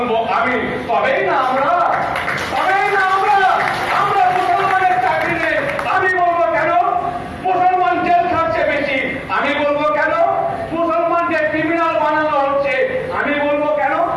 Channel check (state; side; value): identical; both; correlation 1.00